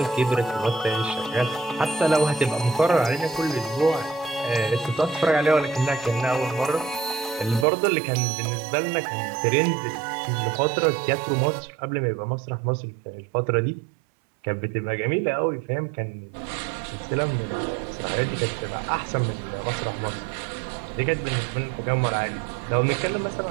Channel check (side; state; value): left; drops out; at 7.7 s